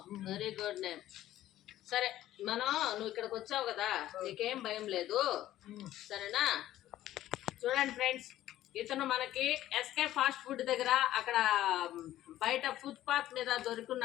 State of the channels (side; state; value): right; quieter; 13.7 dB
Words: Very good name. సరే నువ్వు ఇక్కడికి వచ్చావు కదా, నీకేం భయం లేదు సరేనా? చూడండి ఫ్రెండ్స్, ఇతను మనకి ఎస్కే ఫాస్ట్ ఫుడ్ దగ్గర అక్కడ బయట ఫుట్పాత్ మీద